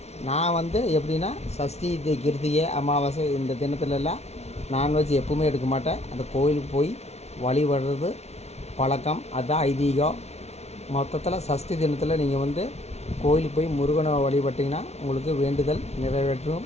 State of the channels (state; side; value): late; right; 0.31 ms